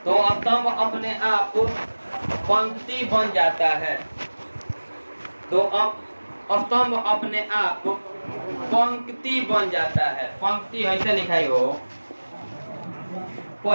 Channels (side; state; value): both; inverted; correlation -1.00